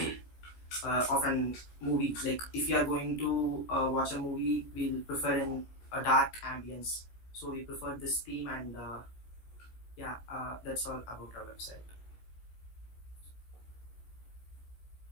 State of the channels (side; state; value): right; late; 16 ms